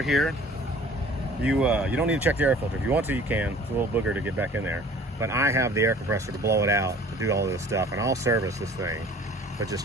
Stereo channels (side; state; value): both; normal; correlation 0.49